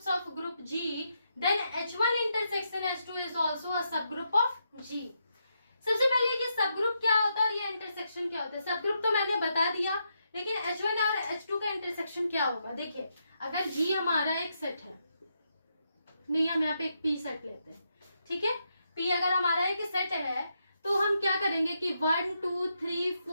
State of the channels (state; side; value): inverted; both; correlation -0.82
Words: of group G, then H1 intersection H2 is also a subgroup of G। सबसे पहले कि सबग्रुप क्या होता है और ये इंटरसेक्शन क्या होता है। सबग्रुप तो मैंने बता दिया, लेकिन H1 और H2 का इंटरसेक्शन क्या होगा। देखिए, अगर G हमारा एक सेट है, नहीं हम यहाँ पे एक P सेट लेते हैं, ठीक है। P अगर हमारा एक सेट है तो हम क्या करेंगे कि 1 2 3